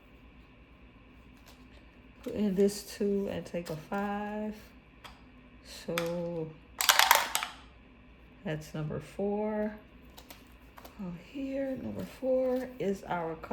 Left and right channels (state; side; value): identical; both; correlation 1.00